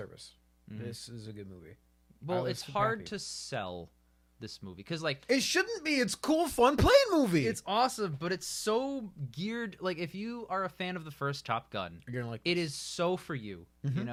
This is a good movie. Well, it's hard to sell this movie because, like, it shouldn't be. It's cool, fun, playing movie. It's awesome, but it's so geared. Like, if you are a fan of the first Top Gun, you're gonna like it. Is so for you, you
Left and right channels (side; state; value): both; identical; correlation 1.00